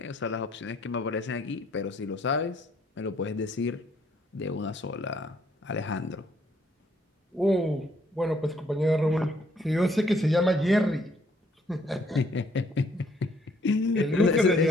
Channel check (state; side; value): normal; both; correlation 0.66